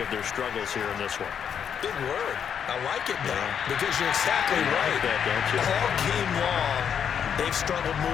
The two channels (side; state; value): right; quieter; 7.9 dB